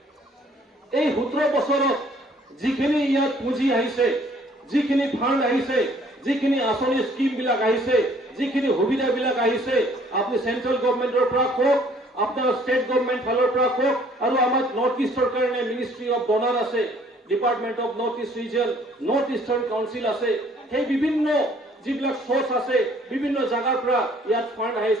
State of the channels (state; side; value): normal; both; correlation 0.59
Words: এই 17 বছৰত যিখিনি ইয়াত পুঁজি আহিছে, যিখিনি ফাণ্ড আহিছে, যিখিনি আঁচনি স্কিমবিলাক আহিছে, যিখিনি সুবিধাবিলাক আহিছে, আপুনি চেন্ট্ৰেল গভৰ্ণমেণ্টৰ পৰা কওক, আপোনাৰ ষ্টেট গভৰ্ণমেণ্ট ফালৰ পৰা কওক, আৰু আমাৰ নৰ্থ ইষ্টৰ কাৰণে মিনিষ্ট্ৰী অফ ডনাৰ আছে, department of north east region, north eastern council আছে, সেই বিভিন্ন যিবিলাক সোৰ্চ আছে, বিভিন্ন জাগাৰ পৰা ইয়াত ফাণ্ড